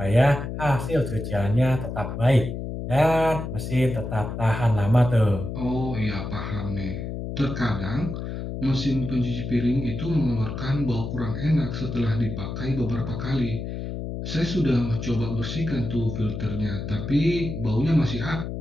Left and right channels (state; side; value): noise; left; hum, 6 dB below the sound